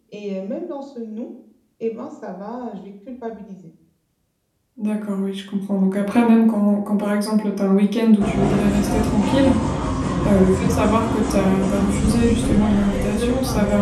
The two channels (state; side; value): identical; both; correlation 1.00